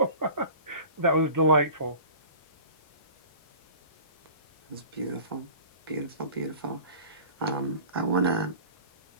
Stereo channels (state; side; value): inverted; both; correlation -0.43